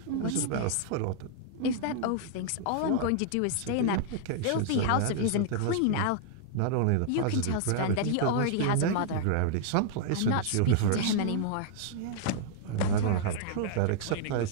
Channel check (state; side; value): different; both; correlation -0.01